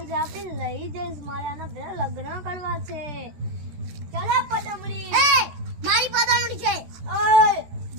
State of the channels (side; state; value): left; late; 14 ms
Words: આપી લઈ જઈશ. મારે આના ભેળા લગ્ન કરવા છે. ચાલો પદામડી એ મારી પદામડી છે. ઓય